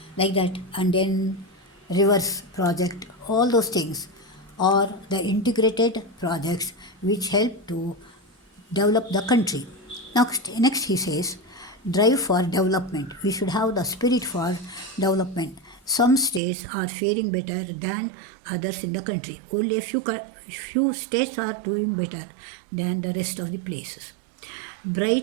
Like that, and then rivers project, all those things. or the integrated projects which help to develop the country. Next he says, drive for development. We should have the spirit for development. Some states are faring better than others in the country. Only a few states are doing better than the rest of the places.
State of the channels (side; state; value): left; drops out; at 16.4 s